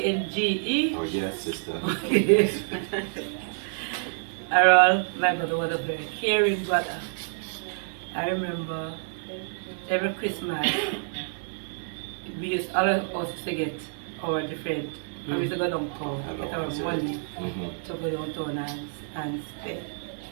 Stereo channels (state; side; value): silent; left; digital silence